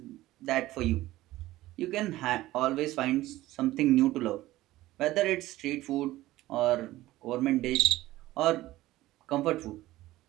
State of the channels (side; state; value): left; quieter; 16.5 dB